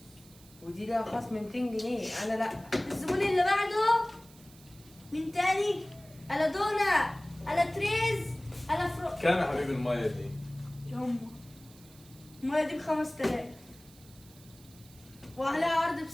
ودي لها خصم 200 جنيه. انا لا. الزبون اللي بعده مين تاني؟ الا دونا، الا تريز، الا فرو. كام يا حبيبي المية دي؟ يما المية دي ب5000 وعليها عرض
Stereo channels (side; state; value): right; noise; hiss, 24 dB below the sound